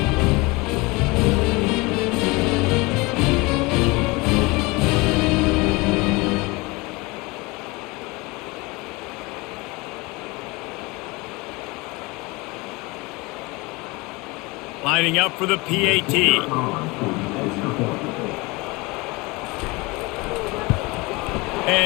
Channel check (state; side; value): quieter; right; 24.7 dB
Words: Lining up for the PAT.